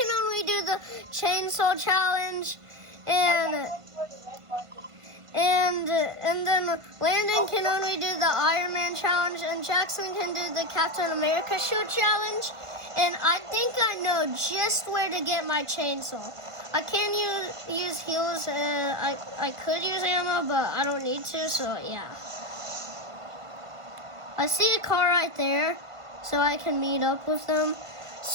only do the chainsaw challenge, and then Landon can only do the Iron Man challenge, and Jackson can do the Captain America shield challenge. And I think I know just where to get my chainsaw. I can use heals. I could use ammo, but I don't need to. So yeah. I see a car right there, so I can meet up with them.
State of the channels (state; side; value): late; left; 1.5 ms